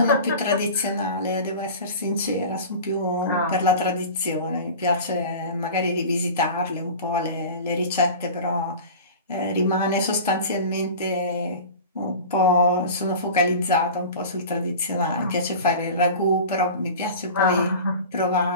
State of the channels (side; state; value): both; inverted; correlation -0.35